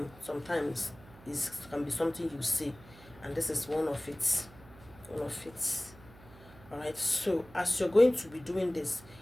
sometimes is can be something you say, and this is one of it. All right, so as you're going to be doing this,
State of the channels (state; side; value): noise; right; hum, 21 dB below the sound